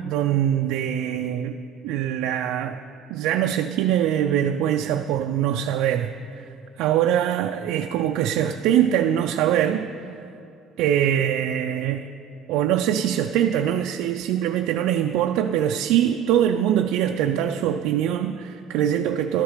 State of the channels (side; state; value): left; quieter; 10.0 dB